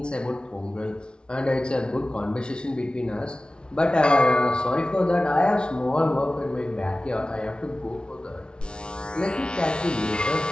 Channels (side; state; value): right; late; 0.055 ms